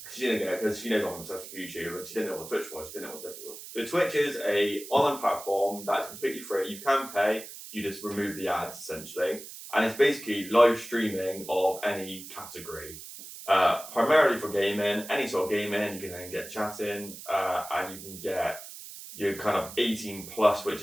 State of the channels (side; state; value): right; noise; hiss, 13 dB below the sound